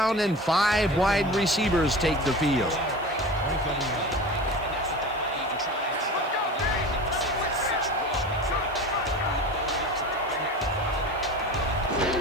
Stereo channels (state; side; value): noise; right; hiss, 29 dB below the sound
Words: and 5 wide receivers take the field. 27 yards.